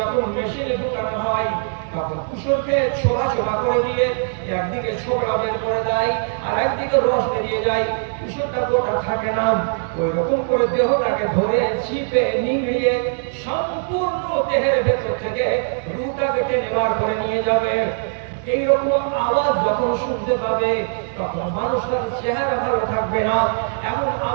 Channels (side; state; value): left; silent; digital silence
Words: মেশিনে ঢুকানো হয় তখন কুসরকে ছোলা ছোলা করে দিয়ে একদিকে ছোকরা বের করে দেয় আর একদিকে রস বেরিয়ে যায়, কুসরটা গোটা থাকে না। ওই রকম করে দেহটাকে ধরে চিপে নিংড়িয়ে সম্পূর্ণ দেহের ভেতর থেকে রুটাকে টেনে বার করে নিয়ে যাবে। এইরকম আওয়াজ যখন শুনতে পাবে তখন মানুষটার চেহারা ভালো থাকবে না। এমন